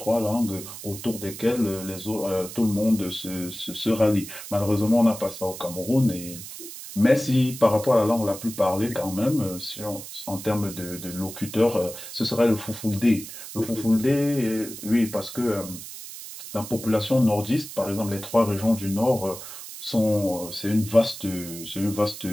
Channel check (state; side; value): noise; right; hiss, 12 dB below the sound